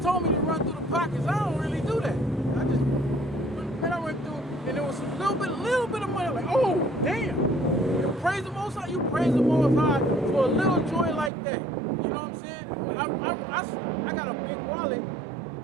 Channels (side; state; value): left; drops out; at 11.3 s